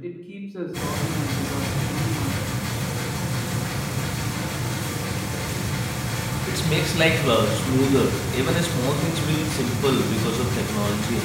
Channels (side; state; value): both; identical; correlation 1.00